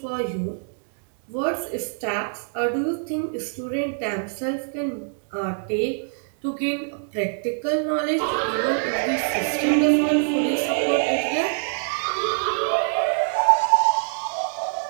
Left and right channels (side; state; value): left; silent; digital silence